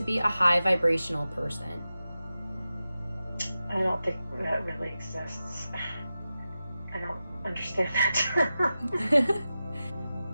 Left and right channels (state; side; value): inverted; both; correlation -0.93